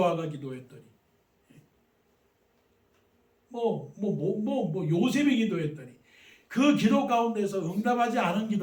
기도했더니, 요셉이 기도했더니, 그 기도 가운데서 응답하지 않은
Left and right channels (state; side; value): identical; both; correlation 1.00